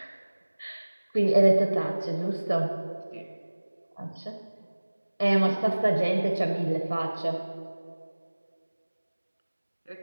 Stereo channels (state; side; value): inverted; both; correlation -1.00